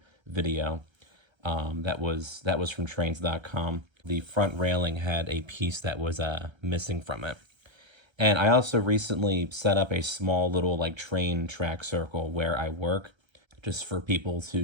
video that was from trains.com. The front railing had a piece that was missing from it. And I also recently set up a small little like train track circle where I work, just for people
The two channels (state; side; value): late; left; 1.3 ms